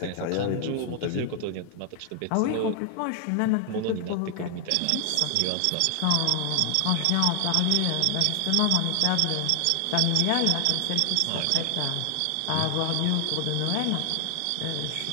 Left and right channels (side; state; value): both; different; correlation 0.00